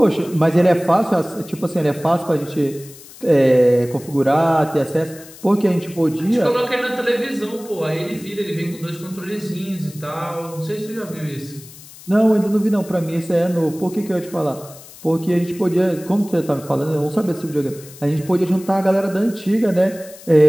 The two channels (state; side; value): noise; left; hiss, 19 dB below the sound